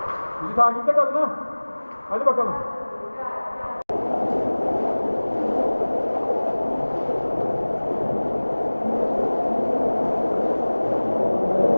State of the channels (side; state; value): both; inverted; correlation -1.00